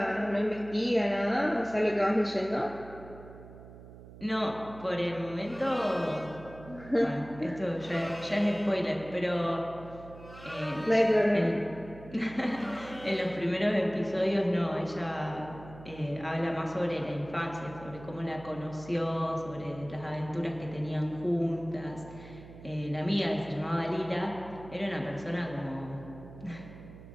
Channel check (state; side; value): noise; right; hum, 17 dB below the sound